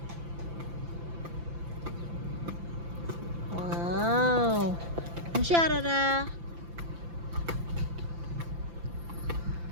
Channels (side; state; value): left; late; 5.9 ms